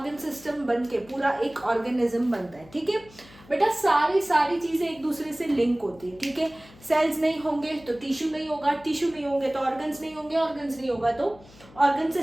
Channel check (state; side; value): noise; left; hum, 23 dB below the sound